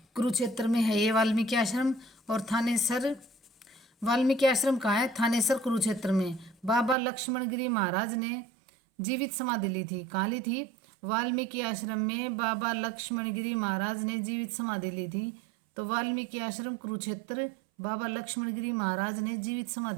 कुरुक्षेत्र में है ये वाल्मीकि आश्रम। और थानेसर वाल्मीकि आश्रम कहाँ है? थानेसर कुरुक्षेत्र में। बाबा लक्ष्मण गिरी महाराज ने जीवित समाधि ली थी। कहाँ ली थी? वाल्मीकि आश्रम में बाबा लक्ष्मण गिरी महाराज ने जीवित समाधि ली थी। तो वाल्मीकि आश्रम कुरुक्षेत्र, बाबा लक्ष्मण गिरी महाराज ने जीवित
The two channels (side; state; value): left; drops out; at 7.0 s